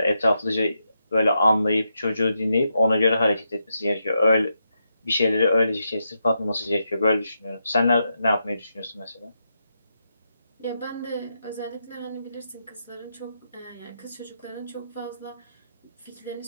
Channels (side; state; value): both; inverted; correlation -0.84